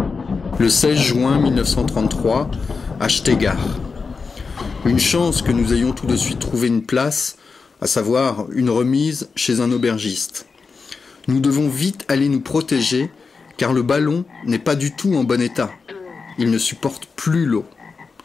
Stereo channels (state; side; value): quieter; right; 4.8 dB